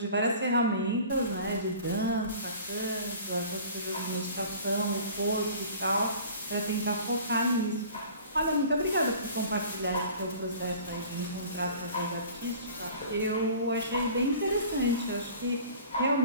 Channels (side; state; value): both; inverted; correlation -0.44